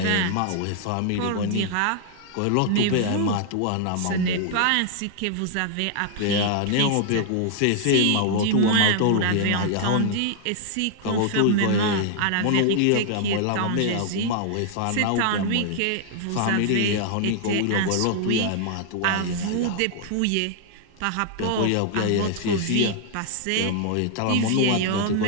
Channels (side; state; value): both; different; correlation -0.01